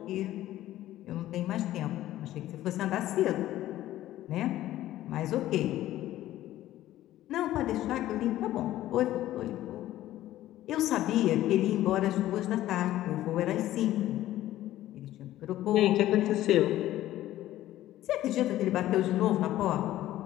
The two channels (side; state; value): right; quieter; 14.2 dB